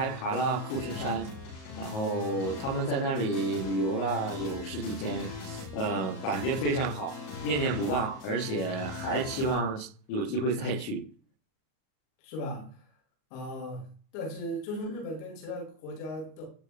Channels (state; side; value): late; right; 37 ms